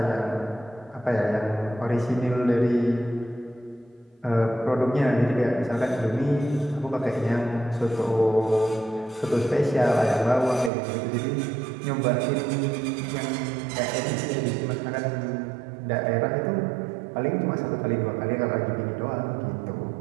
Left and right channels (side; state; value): left; drops out; at 10.7 s